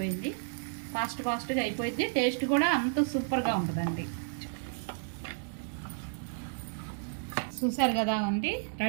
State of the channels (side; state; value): left; silent; digital silence